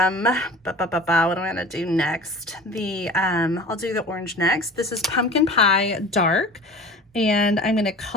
I going to do next? I'll do the orange next. This is Pumpkin Pie Dark, and I'm going to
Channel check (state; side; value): normal; both; correlation 0.40